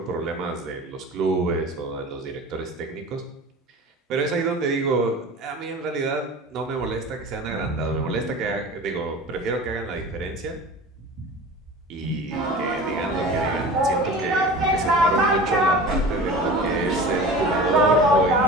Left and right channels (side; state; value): both; normal; correlation 0.36